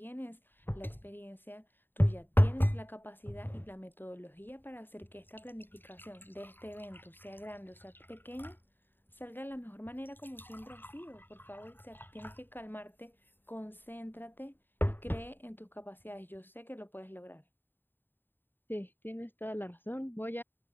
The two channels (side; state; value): right; late; 0.095 ms